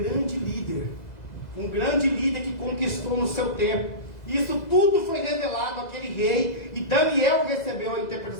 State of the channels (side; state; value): right; late; 2.0 ms